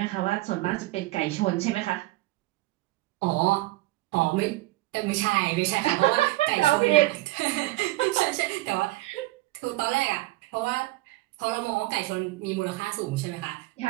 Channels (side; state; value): left; quieter; 19.0 dB